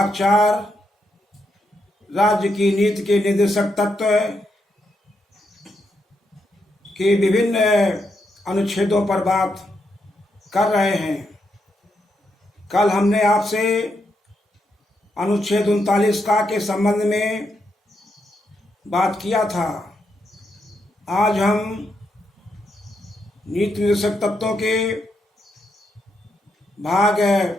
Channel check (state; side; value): normal; both; correlation 0.81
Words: 4 राज्य की नीति के निर्देशक तत्व के विभिन्न अनुच्छेदों पर बात कर रहे हैं। कल हमने आपसे अनुच्छेद 39 का के संबंध में बात किया था। आज हम नीति निर्देशक तत्वों के भाग